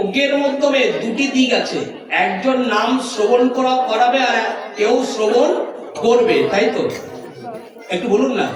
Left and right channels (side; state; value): both; identical; correlation 1.00